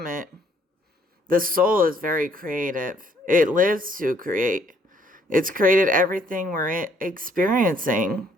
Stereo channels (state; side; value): normal; both; correlation 0.65